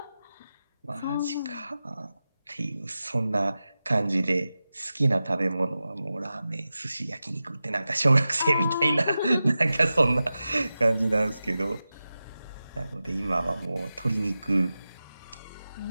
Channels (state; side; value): inverted; both; correlation -0.94